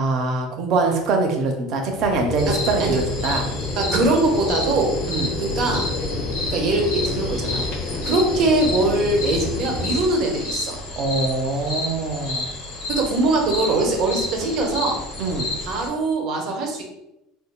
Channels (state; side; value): normal; both; correlation 0.37